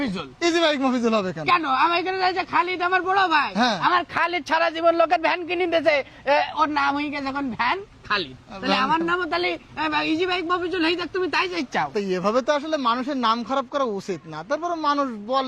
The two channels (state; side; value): identical; both; correlation 1.00